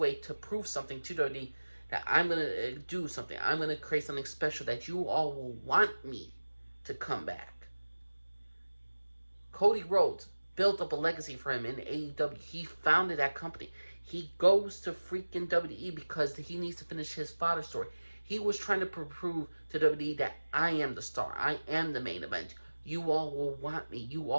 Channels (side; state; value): both; inverted; correlation -1.00